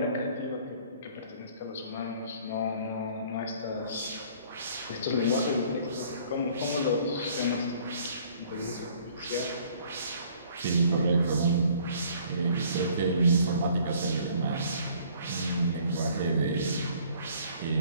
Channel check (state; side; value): inverted; both; correlation -0.56